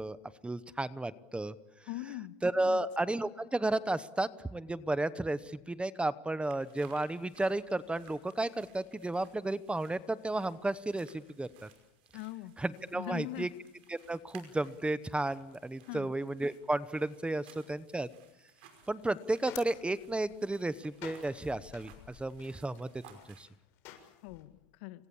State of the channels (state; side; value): normal; both; correlation 0.91